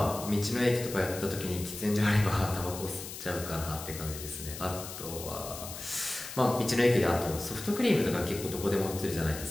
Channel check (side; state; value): left; noise; hiss, 10 dB below the sound